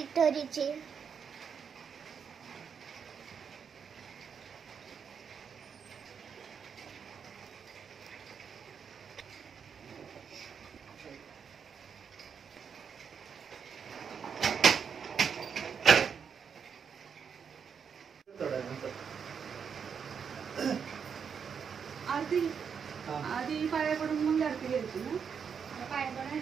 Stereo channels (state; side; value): quieter; left; 6.8 dB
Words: आधी पाया पडून मग आरती घ्यायची ना. पाया